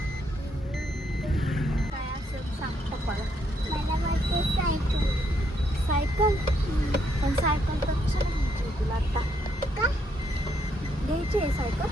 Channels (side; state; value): both; normal; correlation 0.74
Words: सायकल पण सायकल तर कशाला घ्यायची तुला आता? का घ्यायची आहे सायकल?